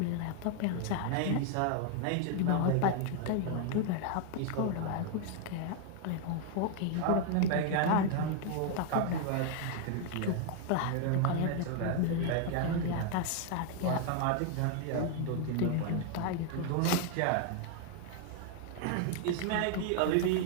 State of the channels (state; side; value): different; both; correlation 0.00